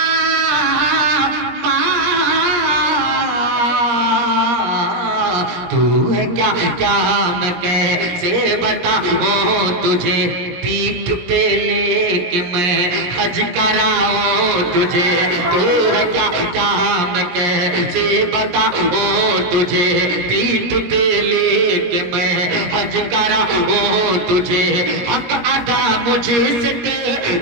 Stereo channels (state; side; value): late; left; 17 ms